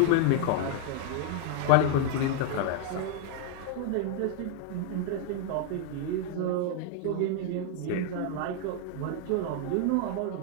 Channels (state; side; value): different; both; correlation 0.00